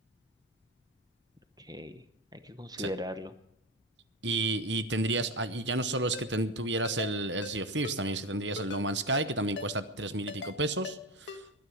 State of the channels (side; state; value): both; normal; correlation 0.19